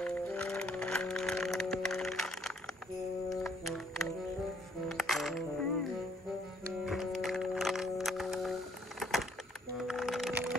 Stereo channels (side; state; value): both; normal; correlation 0.65